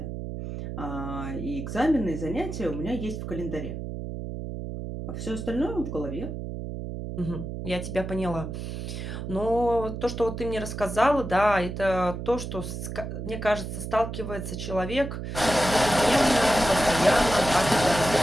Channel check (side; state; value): right; noise; hum, 6 dB below the sound